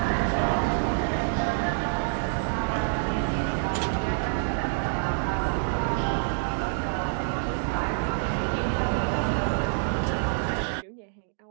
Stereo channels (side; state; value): left; silent; digital silence